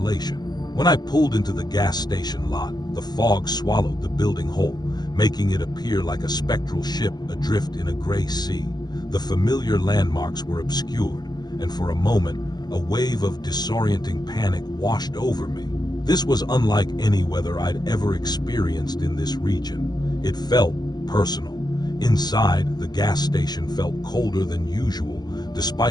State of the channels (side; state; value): right; late; 0.20 ms